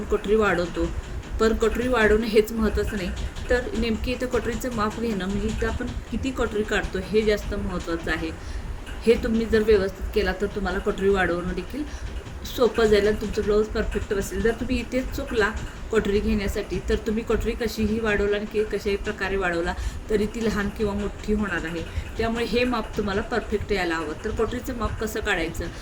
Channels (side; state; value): both; identical; correlation 1.00